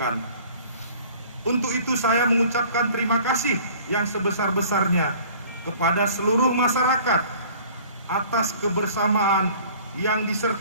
Untuk itu saya mengucapkan terima kasih yang sebesar-besarnya kepada seluruh masyarakat atas kebersamaan yang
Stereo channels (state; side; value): inverted; both; correlation -0.50